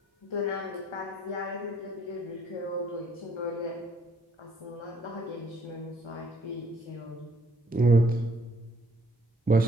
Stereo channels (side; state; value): both; normal; correlation 0.64